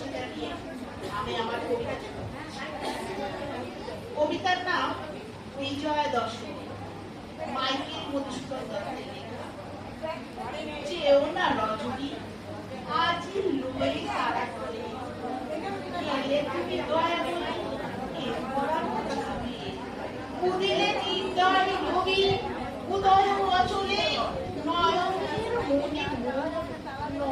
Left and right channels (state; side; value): identical; both; correlation 1.00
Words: জানিয়ে আমি আমার কবিতার নাম বিজয়া দশমী, মাইকেল মধুসূদন দত্তের লেখা। চেয়েও না রজনী আজি লুয়ে তারা করে, এলে তুমি দয়া করে উদিলে নির্দয় নবী উদয় অচলে নয়নের মনে